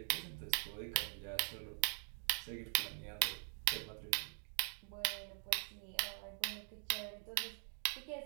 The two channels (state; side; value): silent; left; digital silence